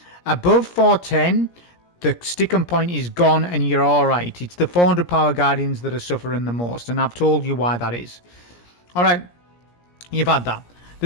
Above 410, the sticking point is gone and you're alright. It's the 400 power Guardians that are suffering the most, and I've told you why that is. Alright, you've had that.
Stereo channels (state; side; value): late; right; 17 ms